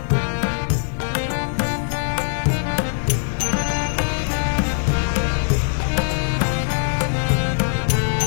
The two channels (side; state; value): right; silent; digital silence